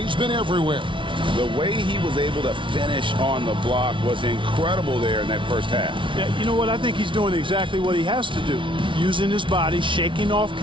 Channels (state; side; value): late; left; 0.24 ms